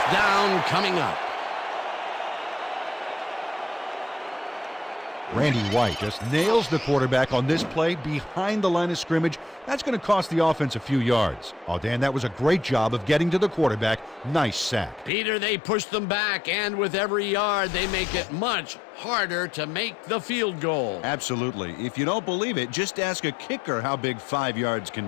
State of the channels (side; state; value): right; drops out; at 15.1 s